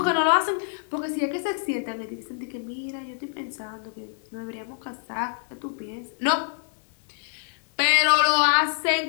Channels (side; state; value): right; silent; digital silence